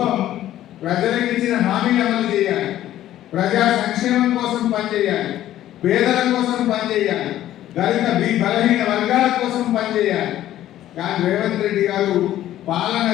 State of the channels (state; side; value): quieter; right; 13.0 dB